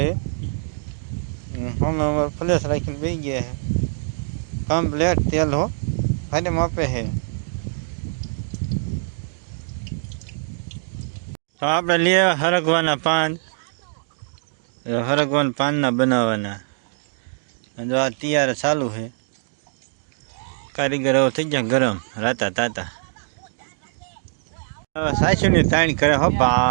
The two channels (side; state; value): left; silent; digital silence